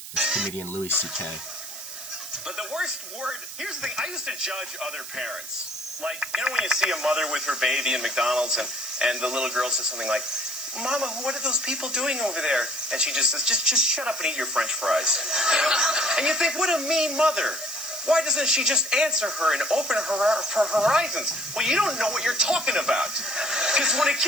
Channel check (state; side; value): noise; right; hiss, 12 dB below the sound